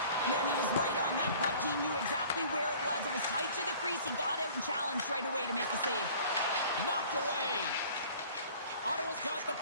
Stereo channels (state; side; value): inverted; both; correlation -0.49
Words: Man, he was right on that puck. He knew exactly where it was. It was tight to the crease. He got out and challenged right away to make the save. Knocked away. Ottawa's got the